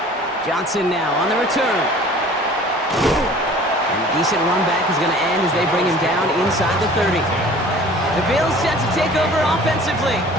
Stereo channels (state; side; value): normal; both; correlation 0.47